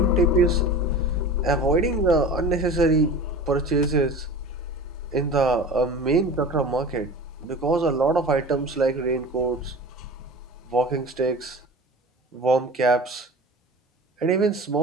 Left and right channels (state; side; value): normal; both; correlation 0.36